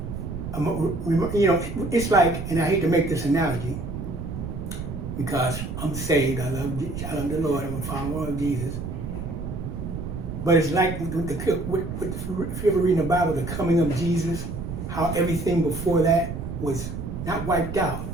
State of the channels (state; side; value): noise; right; rumble, 6 dB below the sound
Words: it's like, and I hate to make this analogy because I'm saved, I love the Lord, I'm a follower of Jesus. But it's like if you ever read in the Bible, the coming of Jesus, how everything before that was not wiped out,